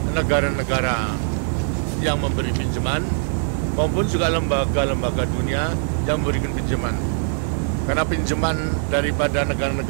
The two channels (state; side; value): silent; left; digital silence